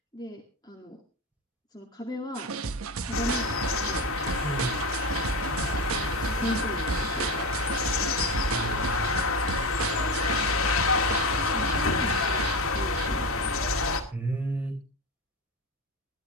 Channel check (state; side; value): normal; both; correlation 0.20